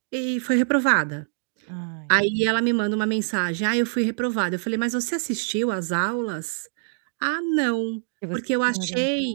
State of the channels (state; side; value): silent; left; digital silence